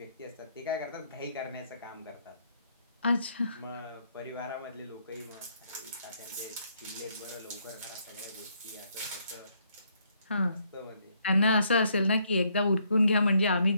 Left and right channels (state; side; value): inverted; both; correlation -0.71